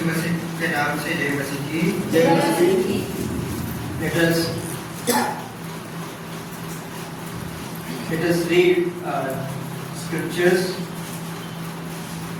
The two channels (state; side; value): identical; both; correlation 1.00